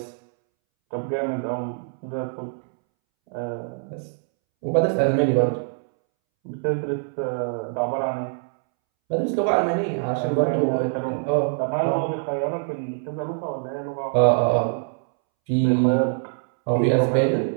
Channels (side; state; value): left; silent; 63 dB below the other